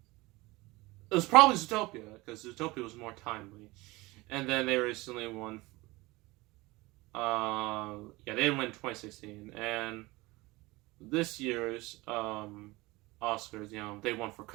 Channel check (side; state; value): left; quieter; 21.8 dB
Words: It was probably Zootopia, because Zootopia was more timely. And then they recently won. They didn't win in 2016. And this year's Oscars, they won for